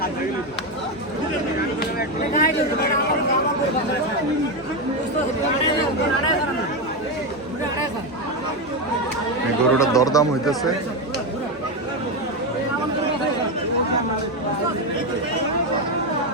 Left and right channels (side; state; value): both; normal; correlation 0.10